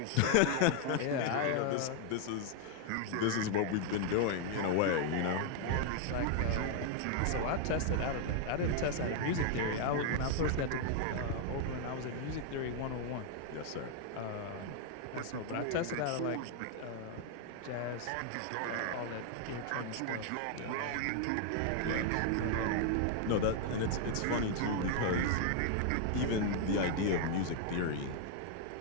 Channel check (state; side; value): different; both; correlation 0.00